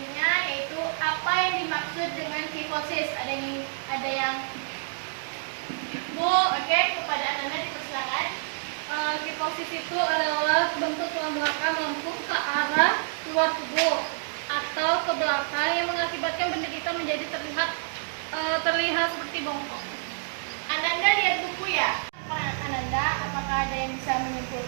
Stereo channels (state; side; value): silent; left; digital silence